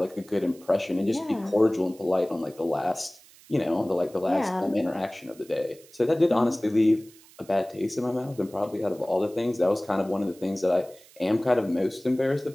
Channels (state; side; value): noise; right; hiss, 24 dB below the sound